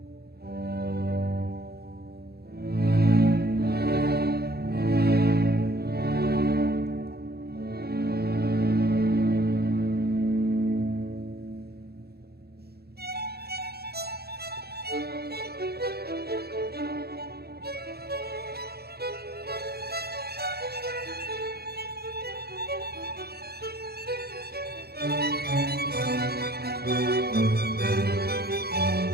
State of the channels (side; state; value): left; late; 0.46 ms